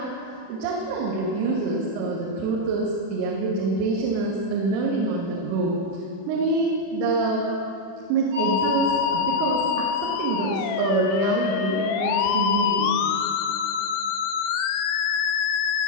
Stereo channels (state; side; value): late; left; 36 ms